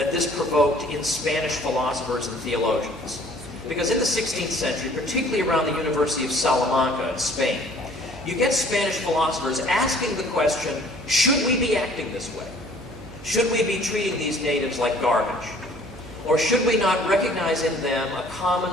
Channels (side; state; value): right; noise; hum, 16 dB below the sound